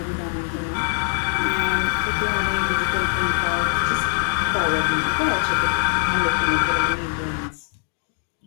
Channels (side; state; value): right; silent; 59 dB below the other